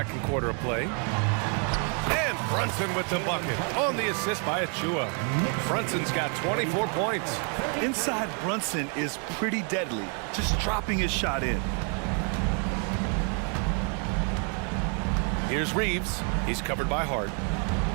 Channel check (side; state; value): left; quieter; 39.9 dB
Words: quarter of play. And Brunson with the bucket on the assist by Achua. Brunson's got 24 points. Inside Brunson is pretty deadly, just dropping his shot in. Here's Reeves. He's covered by Hart.